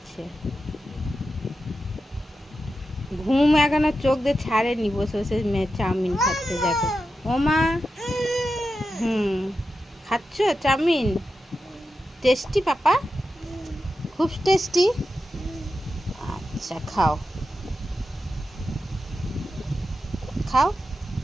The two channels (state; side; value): normal; both; correlation 0.90